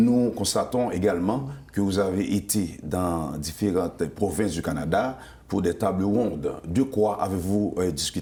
constatons également que vous avez été dans différentes provinces du Canada pour des tables rondes. De quoi avez-vous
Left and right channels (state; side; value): identical; both; correlation 1.00